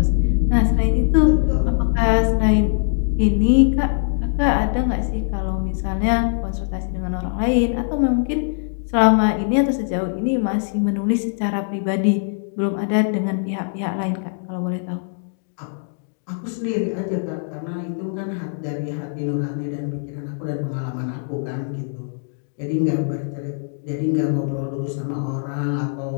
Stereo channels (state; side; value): silent; right; digital silence